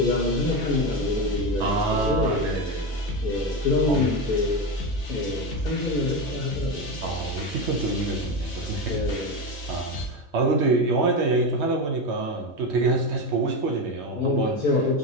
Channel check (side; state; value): both; normal; correlation 0.16